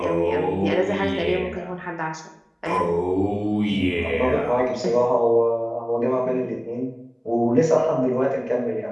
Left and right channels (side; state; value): both; identical; correlation 1.00